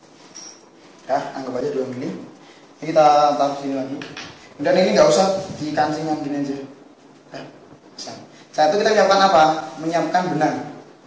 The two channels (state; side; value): identical; both; correlation 1.00